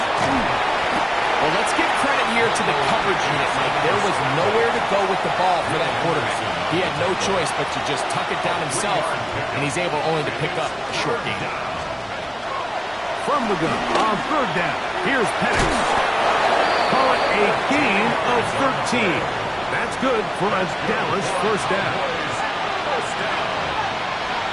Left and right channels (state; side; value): identical; both; correlation 1.00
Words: Well, let's give credit here to the coverage unit, Mike. There was nowhere to go with the ball for that quarterback. He had no choice but to just tuck it down himself, and he's able only to pick up a short gain. From the gun on third down, here's Penix. Call it a gain of 13. That's good for a Dallas first down.